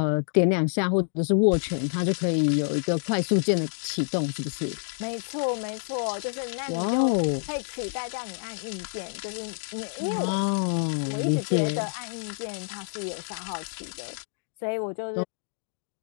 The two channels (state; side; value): silent; right; digital silence